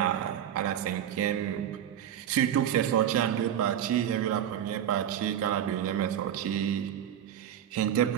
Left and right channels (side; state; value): left; quieter; 10.1 dB